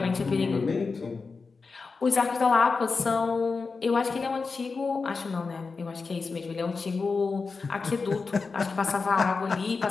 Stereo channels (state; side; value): quieter; right; 4.5 dB